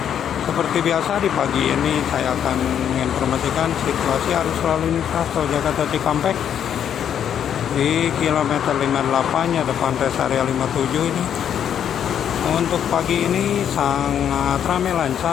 Seperti biasa di pagi ini saya akan menginformasikan situasi arus lalu lintas tol Jakarta Cikampek di kilometer 58 ya, depan rest area 57 ini. Untuk pagi ini sangat ramai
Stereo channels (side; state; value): right; quieter; 9.1 dB